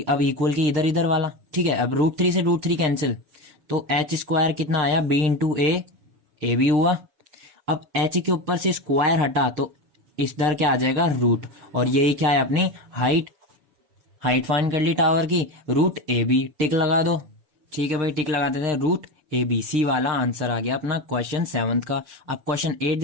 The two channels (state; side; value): late; left; 6.6 ms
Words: अब इक्वल के इधर इधर वाला। ठीक है, अब √3 से √3 कैंसिल, तो एच स्क्वायर कितना आया, b इंटू ए भी हुआ। अब एच के ऊपर से स्क्वायर हटा तो इधर क्या आ जाएगा, रूट। और यही क्या है अपनी हाइट, हाइट फाइंड कर ली टावर की, √AB टिक लगा दो। ठीक है भाई, टिक लगा देते हैं, √ABC वाला आंसर आ गया अपना क्वेश्चन 7 का। अब क्वेश्चन 8